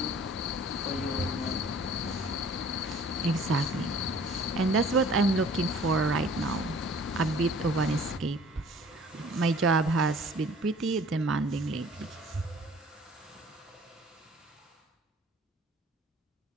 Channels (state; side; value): normal; both; correlation 0.51